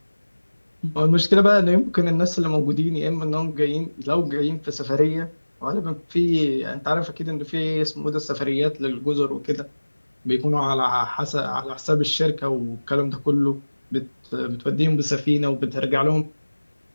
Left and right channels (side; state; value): both; inverted; correlation -1.00